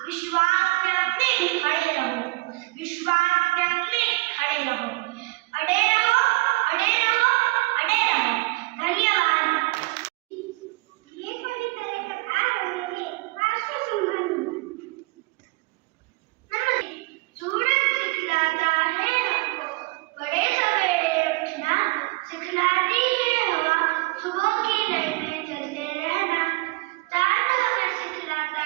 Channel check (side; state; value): left; quieter; 24.4 dB